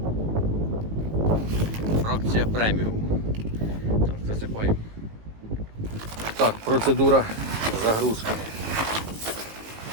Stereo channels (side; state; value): left; late; 18 ms